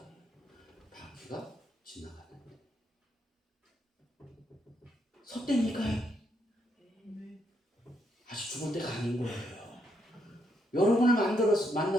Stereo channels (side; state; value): both; normal; correlation 0.76